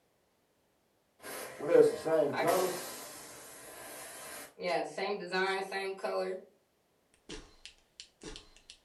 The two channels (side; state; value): both; identical; correlation 1.00